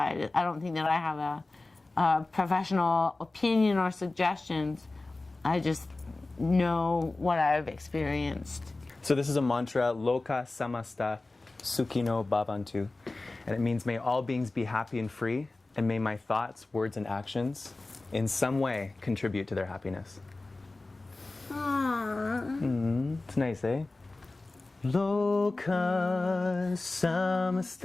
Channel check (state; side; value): quieter; right; 3.2 dB